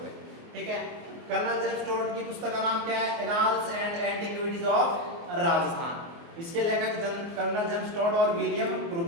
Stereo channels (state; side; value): late; left; 24 ms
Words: है। ठीक है, कर्नल जेम्स टोड की पुस्तक का नाम क्या है? Annals and antiquities of Rajasthan. इसके लेखक कर्नल जेम्स टोड और विलियम